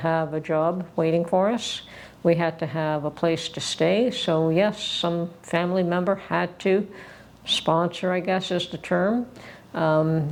a job waiting for us. We had to have a place to stay. So yes, some family member had to sponsor, I guess is the term.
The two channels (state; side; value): identical; both; correlation 1.00